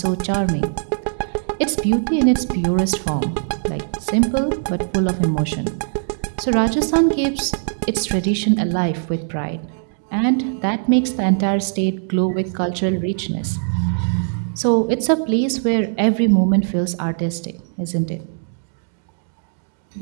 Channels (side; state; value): left; silent; digital silence